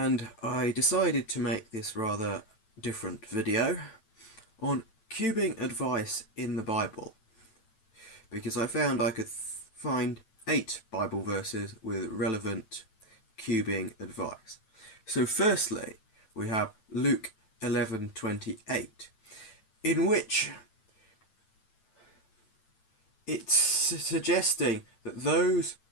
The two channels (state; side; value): late; right; 9.0 ms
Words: I decided to make this rather different video on cubing advice in the Bible, because I found I could find 8 Bible verses with relevant cubing advice. So firstly, we have Luke 11:28, in which it's suggesting that those